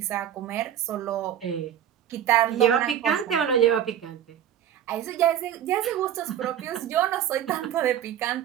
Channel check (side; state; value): left; quieter; 10.4 dB